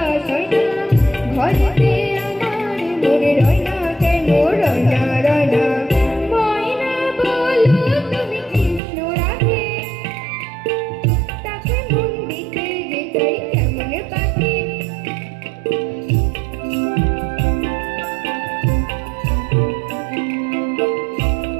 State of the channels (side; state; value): left; drops out; at 8.8 s